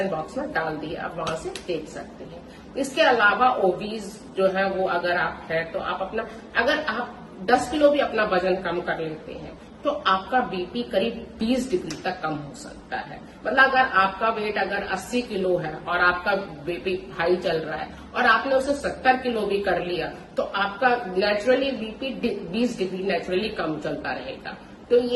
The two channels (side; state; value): both; identical; correlation 1.00